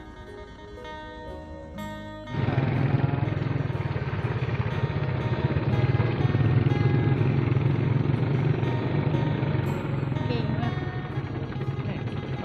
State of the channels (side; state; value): both; identical; correlation 1.00